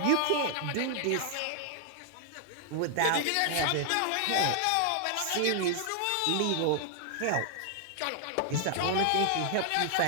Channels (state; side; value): different; both; correlation 0.00